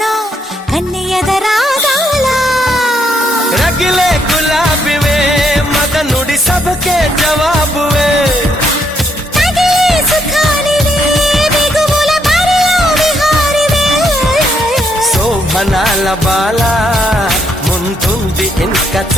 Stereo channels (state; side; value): normal; both; correlation 0.73